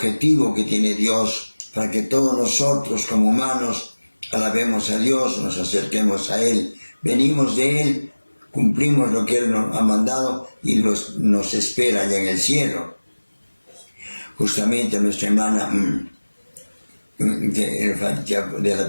que tiene Dios para que todos nosotros como humanos alabemos a Dios, nos acerquemos a Él, venimos de Él, cumplimos lo que Él nos ha mandado y nos espera allá en el cielo. Justamente nuestra hermana de la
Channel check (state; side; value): inverted; both; correlation -1.00